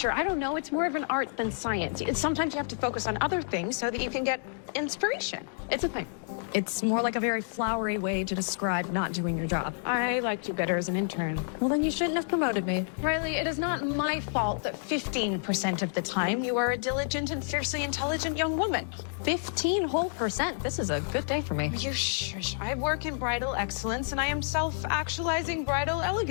I don't know. It's more of an art than science. Sometimes you have to focus on other things so that you can get inspiration. It's a thing. It's more like a very flowery way to describe not doing your job. I liked you better as an intern. Well, then you shouldn't have promoted me. Riley, it is not my fault that 15% of the time you are a diligent and fiercely intelligent young woman. 15 whole percent. This is a good day for me. You shush. I work in bridal excellence and I am self-actualizing bridal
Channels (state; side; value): silent; right; digital silence